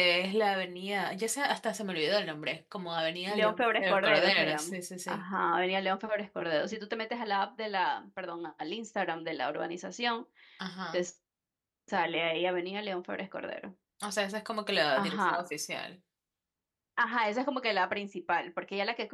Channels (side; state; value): both; identical; correlation 1.00